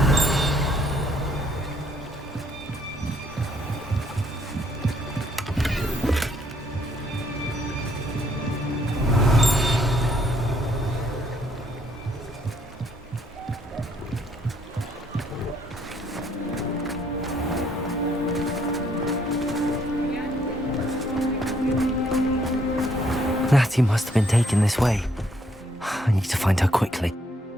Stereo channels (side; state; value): both; normal; correlation 0.68